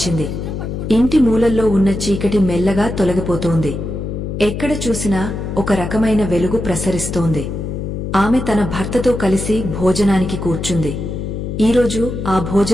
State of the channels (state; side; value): noise; left; hum, 5 dB below the sound